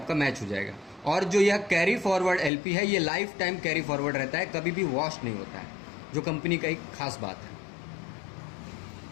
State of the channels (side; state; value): right; drops out; at 2.5 s